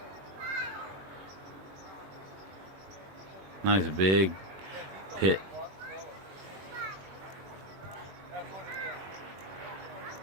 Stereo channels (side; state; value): left; late; 21 ms